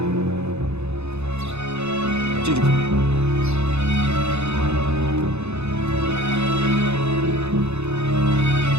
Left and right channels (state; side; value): late; left; 0.81 ms